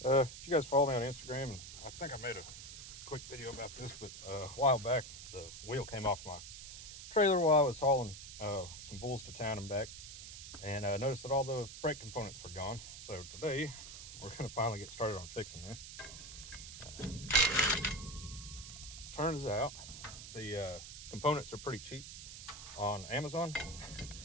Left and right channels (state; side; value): noise; right; hiss, 11 dB below the sound